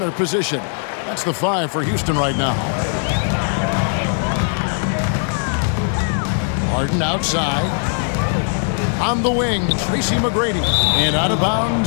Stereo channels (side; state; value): right; silent; 66 dB below the other